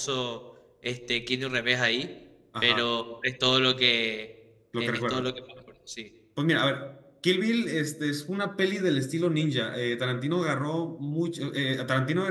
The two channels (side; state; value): both; identical; correlation 1.00